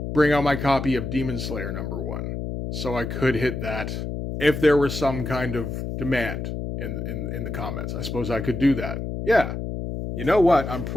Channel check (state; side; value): noise; left; hum, 5 dB below the sound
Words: bring out my copy of Demon Slayer number 1. So I could hit that if there was some kind of demand in the comments. I suppose I could do that. Yeah. You know what? I'm